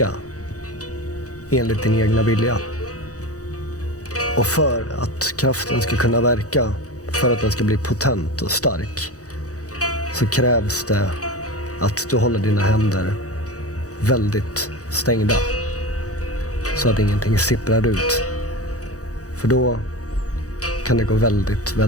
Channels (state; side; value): late; right; 0.66 ms